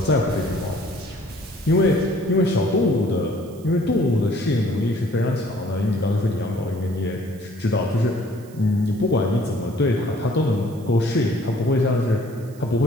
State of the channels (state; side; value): noise; right; hiss, 25 dB below the sound